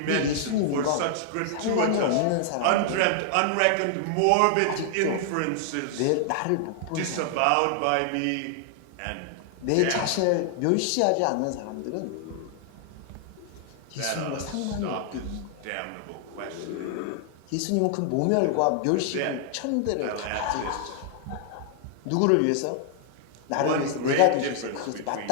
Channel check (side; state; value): both; different; correlation 0.00